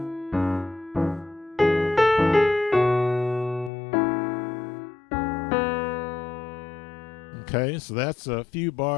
Okay, so that's a few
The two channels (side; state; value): right; drops out; at 3.7 s